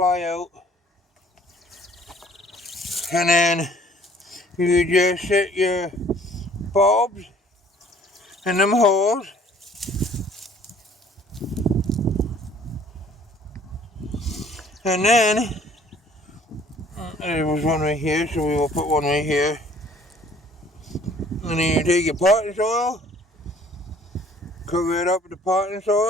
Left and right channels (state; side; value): normal; both; correlation 0.55